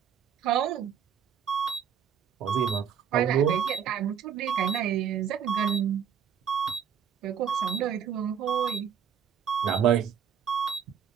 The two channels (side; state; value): left; quieter; 8.2 dB